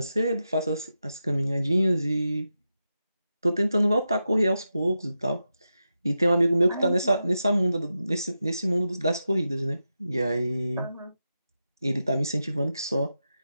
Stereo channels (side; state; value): both; inverted; correlation -0.89